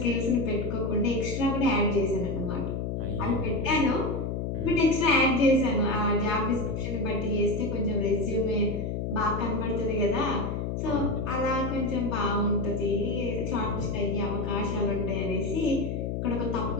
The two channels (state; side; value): noise; left; hum, 2 dB below the sound